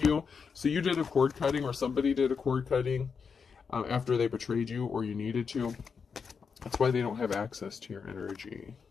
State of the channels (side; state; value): right; quieter; 5.8 dB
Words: So you did a cord cutting, or somebody did a cord cutting after they betrayed you, or you needed to. That's why they don't have access to your energy,